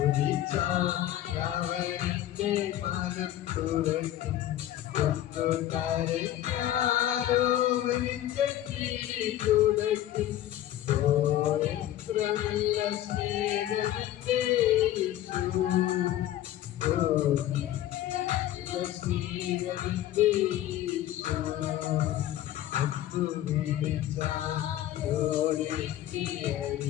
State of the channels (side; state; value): right; quieter; 13.0 dB